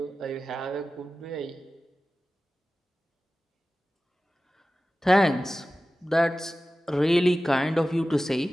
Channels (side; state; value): both; normal; correlation 0.95